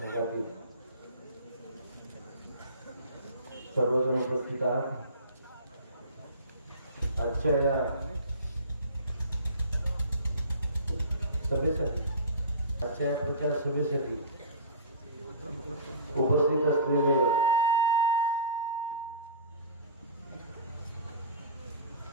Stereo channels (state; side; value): inverted; both; correlation -0.36